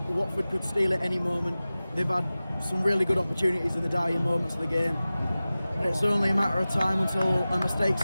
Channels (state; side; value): inverted; both; correlation -0.97